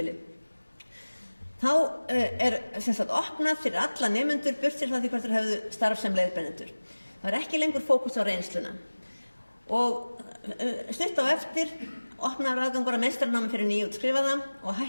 Þá er sem sagt opnað fyrir alla nemendur burtséð frá því hvort þeir hefðu starf sem leiðbeinendur. Það var ekki lengur fókus á reynsluna. Og stutt á eftir opnaður aðgangur að meistaranámi fyrir nýútskrifaða og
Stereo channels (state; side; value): inverted; both; correlation -1.00